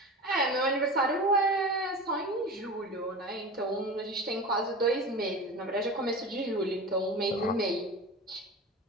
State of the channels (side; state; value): both; normal; correlation 0.31